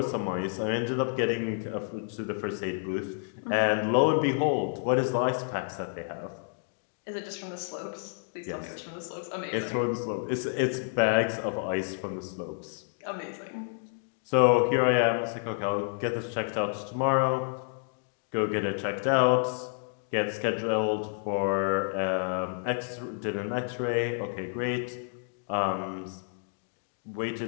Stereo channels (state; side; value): silent; right; digital silence